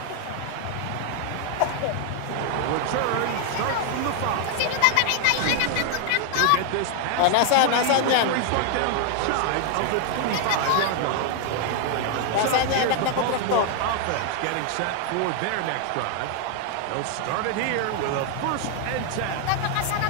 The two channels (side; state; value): both; different; correlation 0.00